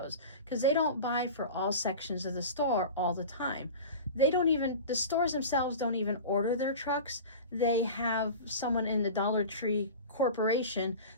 because they don't buy for all sections of the store all the time. The stores themselves don't even order their trucks. They have someone in the Dollar Tree corporation.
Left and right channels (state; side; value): inverted; both; correlation -0.33